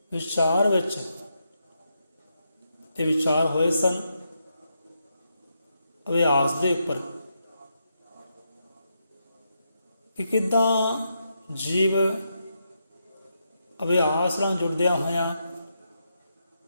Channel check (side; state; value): both; inverted; correlation -0.82